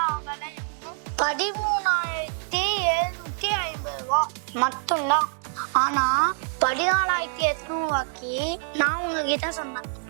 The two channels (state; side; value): silent; left; 60 dB below the other